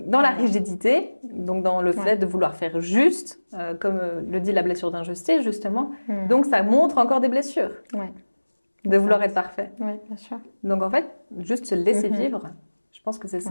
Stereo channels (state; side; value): inverted; both; correlation -1.00